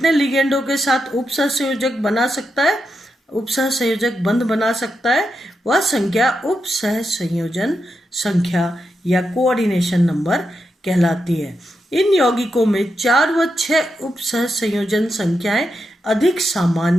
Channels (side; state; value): both; normal; correlation 0.85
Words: लिगेंडों के साथ उपसहसंयोजक बना सकता है, उपसहसंयोजक बंध बना सकता है, वह संख्या उपसहसंयोजन संख्या या कोऑर्डिनेशन नंबर कहलाती है। इन यौगिकों में 4 व 6 उपसहसंयोजन संख्याएं अधिक